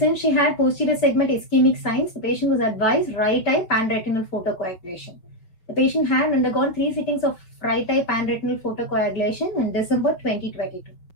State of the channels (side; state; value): right; late; 5.4 ms